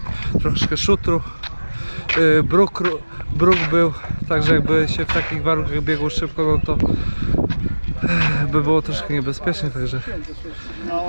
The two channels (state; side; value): inverted; both; correlation -1.00